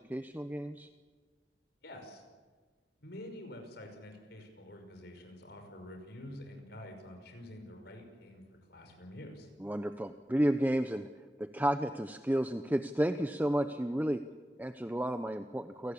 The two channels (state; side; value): normal; both; correlation 0.92